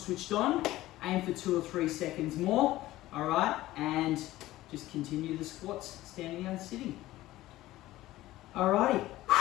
on, aim for 2 or 3 seconds more. All right, and just continue the squats, standing and sitting. Alrighty,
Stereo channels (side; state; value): right; quieter; 16.3 dB